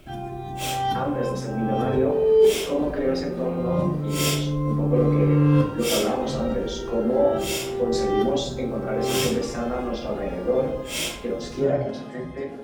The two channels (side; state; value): both; identical; correlation 1.00